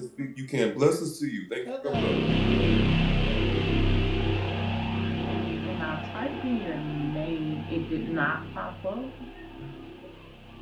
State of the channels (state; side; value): identical; both; correlation 1.00